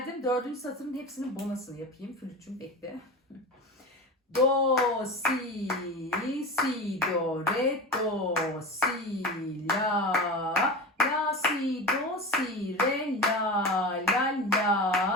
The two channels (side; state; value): both; normal; correlation 0.27